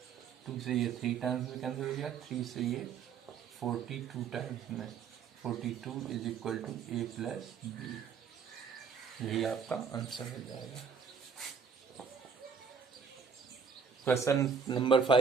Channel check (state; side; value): quieter; left; 6.1 dB